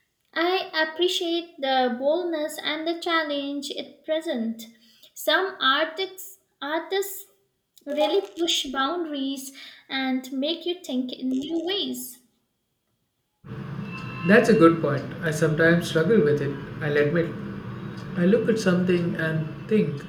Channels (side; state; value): both; identical; correlation 1.00